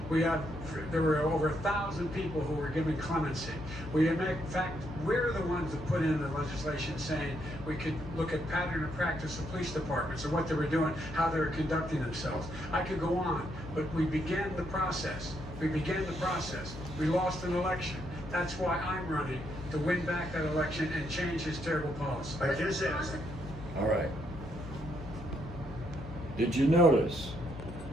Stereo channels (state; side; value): noise; left; hum, 12 dB below the sound